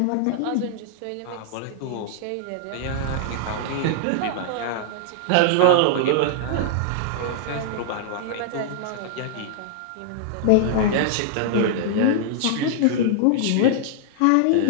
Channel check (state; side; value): different; both; correlation -0.01